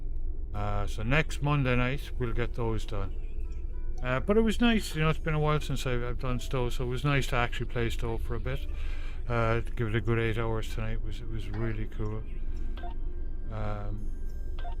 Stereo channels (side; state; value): both; identical; correlation 1.00